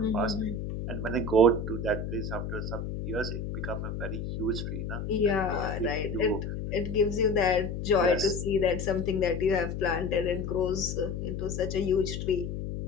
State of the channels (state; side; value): noise; left; hum, 5 dB below the sound